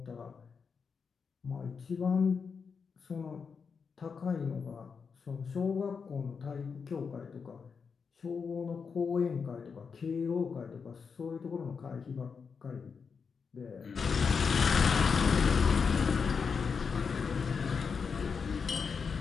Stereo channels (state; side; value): quieter; right; 5.7 dB